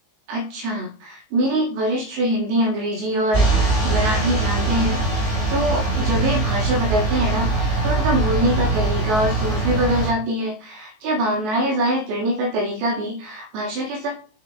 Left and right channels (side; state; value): left; late; 19 ms